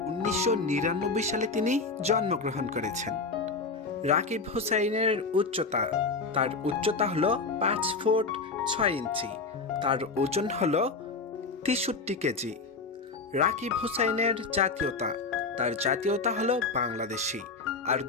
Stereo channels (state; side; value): quieter; right; 4.2 dB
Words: 1999 সালে তিনি জন্মগ্রহণ করেছেন। রাকিব হুসাইনের উচ্চতা, তার উচ্চতা হল 5 ফুট 6 ইঞ্চি, তার ওজন হল 63 কেজি। রাকিব হুসাইনের জাতীয়তা, তার জাতীয়তা হল বাংলাদেশি, আর